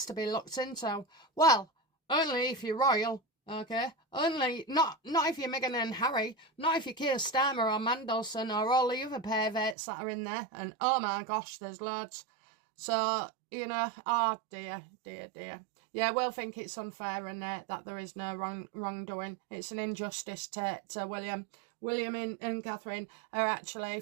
to be looked into. Well, only if you're royal, okay? Only, not if you're Meghan and Harry, not if you're Keir Starmer or Mandelson or all the other perverts that are in there. And, oh my gosh, there's loads. So, you know, oh dear. Yeah, we'll think it's unfair and that there is no wrongdoing. It's an injustice to William. William and Catherine are actually,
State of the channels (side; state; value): left; drops out; at 9.8 s